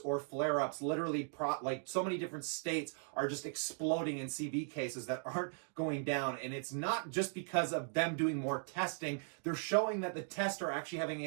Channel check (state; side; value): silent; left; 52 dB below the other